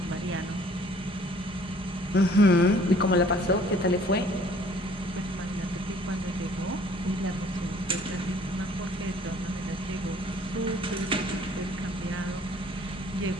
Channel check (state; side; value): normal; both; correlation 0.56